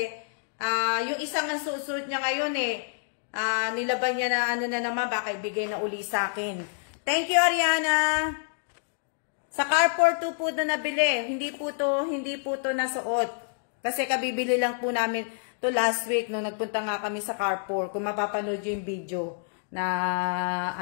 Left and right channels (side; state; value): right; silent; digital silence